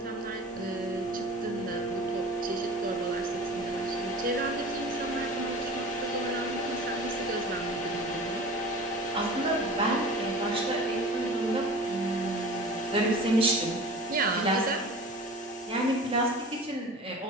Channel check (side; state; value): both; normal; correlation 0.38